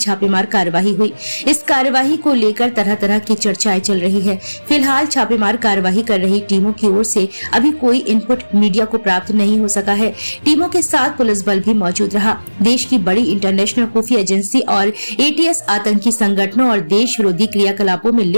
कार्रवाई हुई। इस कार्रवाई को लेकर तरह तरह की चर्चाएं चल रही है। फिलहाल छापेमार कार्रवाई कर रही टीमों की ओर से अभी कोई इनपुट मीडिया को प्राप्त नहीं हो सका है। टीमों के साथ पुलिस बल भी मौजूद रहा। देश की बड़ी इंटरनेशनल खुफिया एजेंसी और एटीएस आतंकी संगठनों और देश विरोधी क्रियाकलापों में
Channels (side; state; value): both; inverted; correlation -1.00